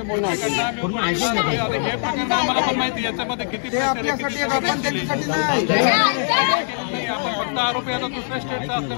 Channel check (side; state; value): right; silent; 65 dB below the other